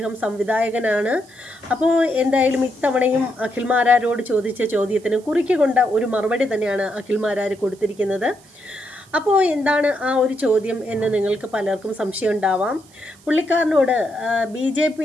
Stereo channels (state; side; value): noise; right; hiss, 27 dB below the sound